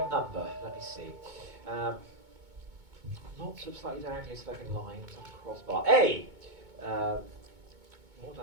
number. Let me see. Lots of slightly diagonally sloping lines on the crossbar. A. More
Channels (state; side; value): late; left; 2.2 ms